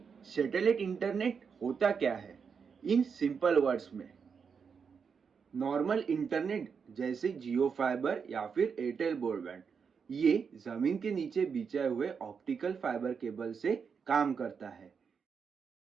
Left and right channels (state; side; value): quieter; left; 6.1 dB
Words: सैटेलाइट इंटरनेट होता क्या है इन सिंपल वर्ड्स में। नॉर्मल इंटरनेट जैसे जियो फाइबर या फिर एयरटेल ब्रॉडबैंड, ये जमीन के नीचे बिछाए हुए ऑप्टिकल फाइबर केबल से काम करता है।